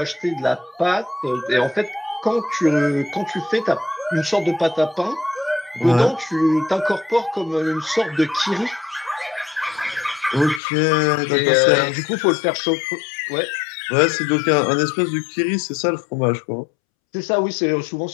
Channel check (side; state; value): right; drops out; at 10.6 s